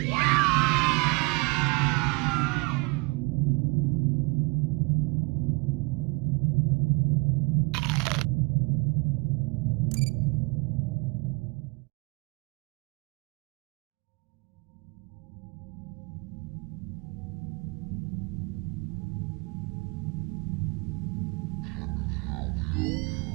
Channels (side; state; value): left; quieter; 28.4 dB